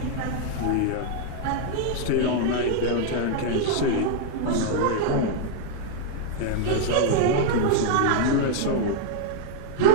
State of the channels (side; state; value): both; different; correlation 0.00